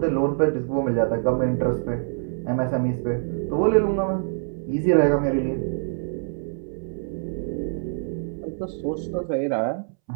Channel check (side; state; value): left; silent; 62 dB below the other